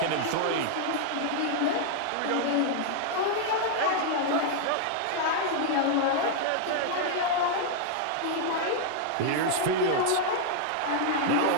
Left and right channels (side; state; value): both; different; correlation -0.01